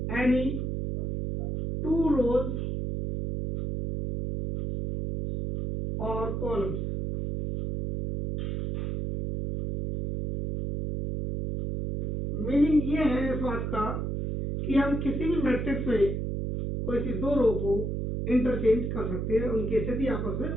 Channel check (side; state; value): right; noise; hum, 2 dB below the sound